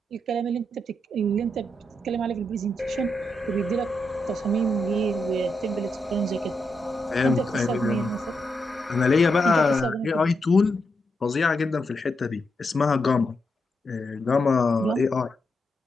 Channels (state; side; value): normal; both; correlation 0.83